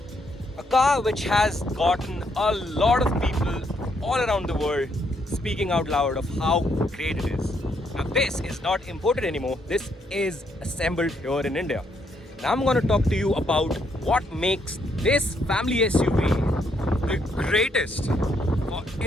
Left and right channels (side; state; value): both; normal; correlation 0.74